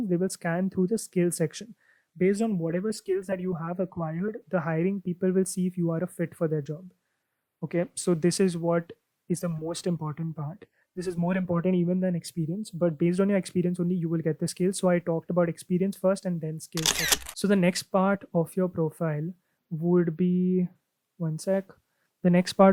they will scan through the skill section. Based on whatever skills that you have acquired, the hiring people will see if you are a fit for their job. Okay, so this is what is the most important part. This is more important even than experience, but based on your experience only you will get the skills. So I talked about experience first and then skills second. So the next part of your profile would be, one sec, the next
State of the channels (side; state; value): both; identical; correlation 1.00